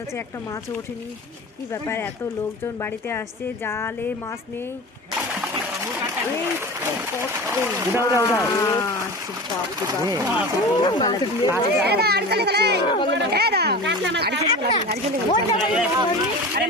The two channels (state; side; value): normal; both; correlation 0.32